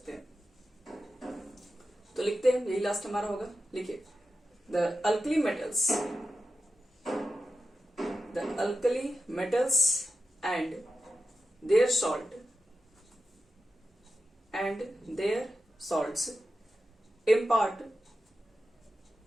हैं, तो लिखते हैं, यही लास्ट हमारा होगा। लिखिए, the alkali metals and their salts impart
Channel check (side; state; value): both; normal; correlation 0.92